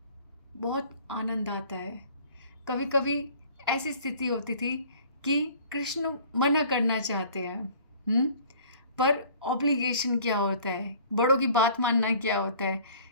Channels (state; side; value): inverted; both; correlation -0.51